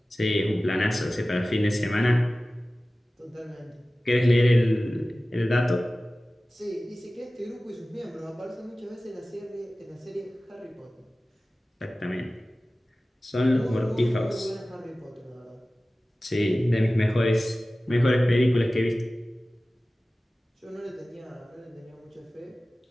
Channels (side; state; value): both; normal; correlation 0.97